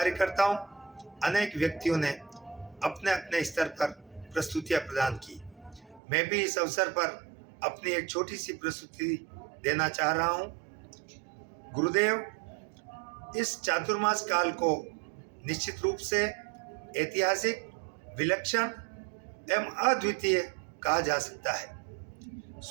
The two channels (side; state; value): left; drops out; at 6.0 s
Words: अनेक व्यक्तियों ने अपने अपने स्तर पर प्रस्तुतियां प्रदान की। मैं भी इस अवसर पर अपनी एक छोटी सी प्रस्तुति देना चाह रहा हूं। गुरुदेव इस चातुर्मास काल को निश्चित रूप से ऐतिहासिक, विलक्षण एवं अद्वितीय कहा जा सकता है।